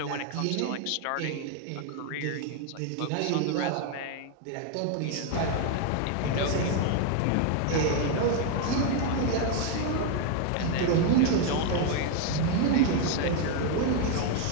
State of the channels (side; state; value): both; different; correlation 0.01